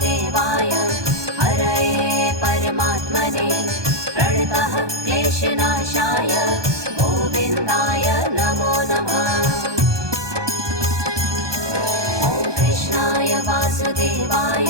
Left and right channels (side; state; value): left; late; 1.2 ms